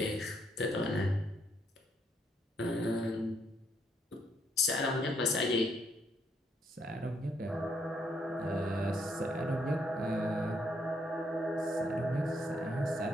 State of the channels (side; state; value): both; normal; correlation 0.73